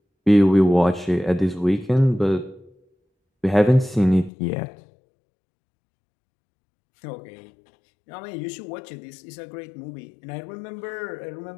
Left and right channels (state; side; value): drops out; right; at 4.3 s